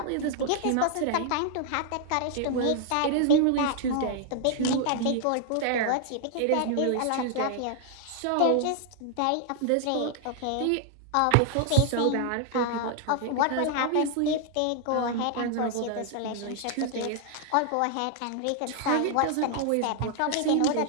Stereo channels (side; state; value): both; different; correlation 0.00